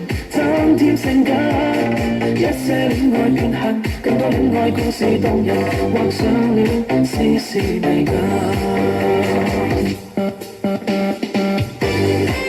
增添性感。一些戀愛變恨，更多戀愛故事動人，畫上了絲絲美感。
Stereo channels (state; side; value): identical; both; correlation 1.00